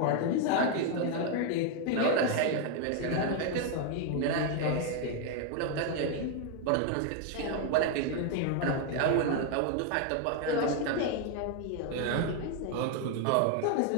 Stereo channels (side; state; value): both; different; correlation 0.00